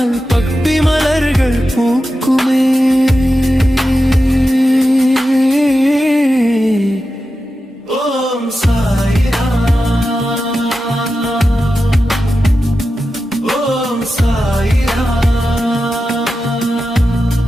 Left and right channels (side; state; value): both; normal; correlation 0.91